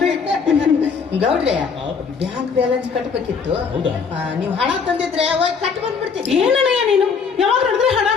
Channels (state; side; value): quieter; right; 5.7 dB